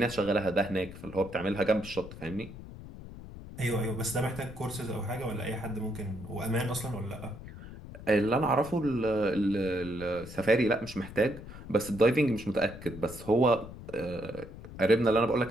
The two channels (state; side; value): noise; left; rumble, 14 dB below the sound